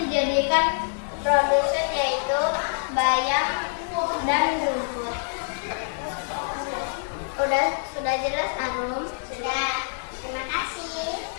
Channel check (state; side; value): silent; right; digital silence